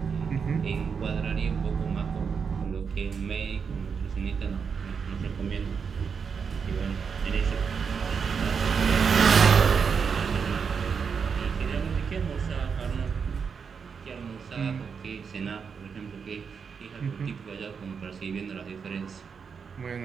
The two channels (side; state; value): left; quieter; 6.1 dB